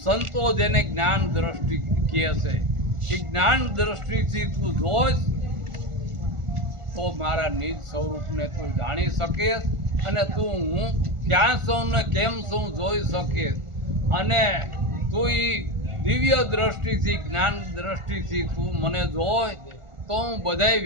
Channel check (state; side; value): late; left; 1.4 ms